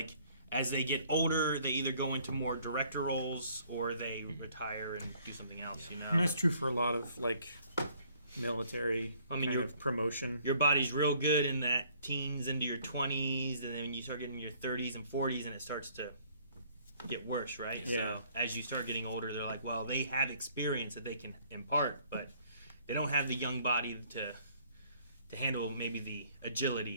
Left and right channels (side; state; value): both; inverted; correlation -0.60